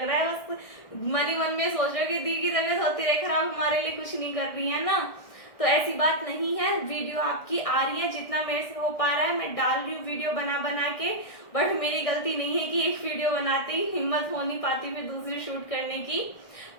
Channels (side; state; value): right; late; 1.6 ms